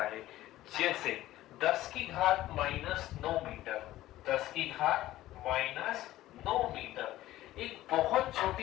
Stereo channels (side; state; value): right; quieter; 15.3 dB